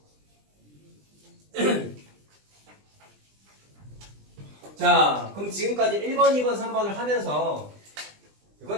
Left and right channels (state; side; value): late; left; 20 ms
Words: 자, 그럼 지금까지 1번, 2번, 3번을 하면서